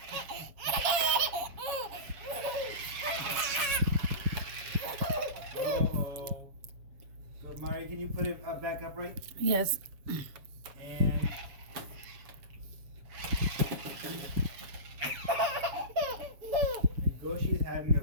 Uh-oh. So Mari, can you put it back upright? Yes. And Goshi is having a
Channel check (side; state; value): left; late; 7.3 ms